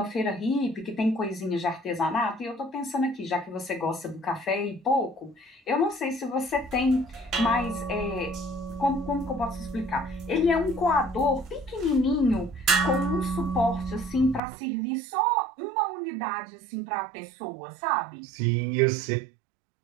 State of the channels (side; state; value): left; drops out; at 14.4 s